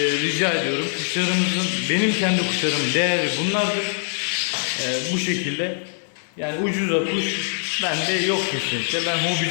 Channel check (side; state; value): right; silent; digital silence